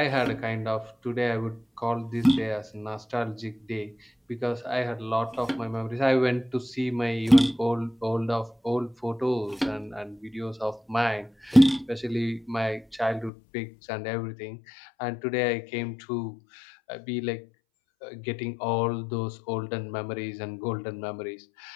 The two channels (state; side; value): drops out; right; at 13.3 s